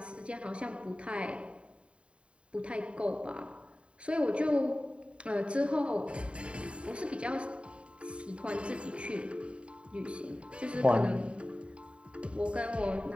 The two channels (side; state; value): left; late; 0.059 ms